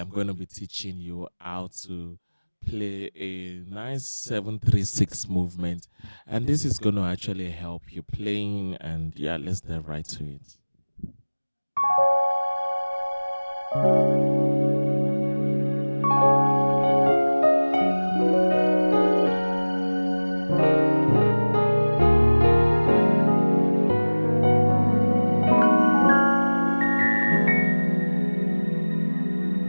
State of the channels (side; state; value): both; inverted; correlation -1.00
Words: going to be teaching you how to play a nice 736 movement, and this is going to actually help you playing, and yeah, let's dive right to it.